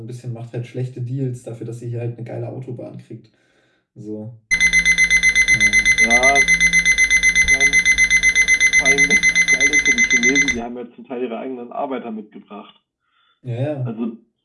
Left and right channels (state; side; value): identical; both; correlation 1.00